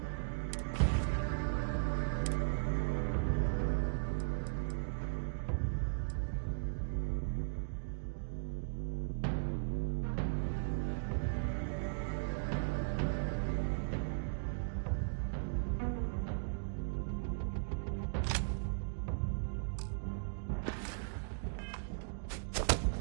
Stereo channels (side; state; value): left; silent; digital silence